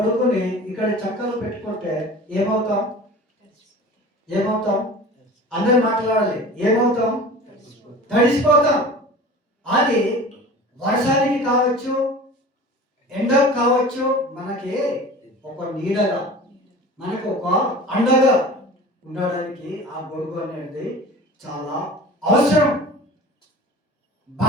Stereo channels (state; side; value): normal; both; correlation 0.39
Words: ఇక్కడ చక్కలు పెట్టుకుంటే ఏమవుతాం? అందరు మాట్లాడాలి. ఏమవుతాం? తడిసిపోతాం. అది వర్షానికి కావచ్చు, ఎండకు కావచ్చు, మనకి ఒక నీడగా, మనకు ఒక అండగా ఉండడానికి ఆ గొడుగు అనేది చాలా అవసరం.